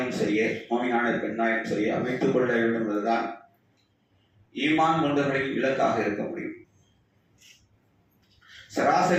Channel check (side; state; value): both; identical; correlation 1.00